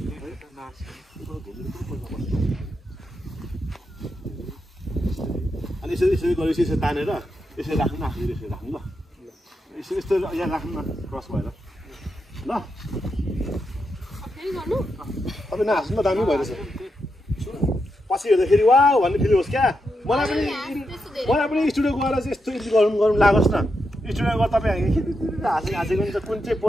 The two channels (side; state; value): both; normal; correlation 0.85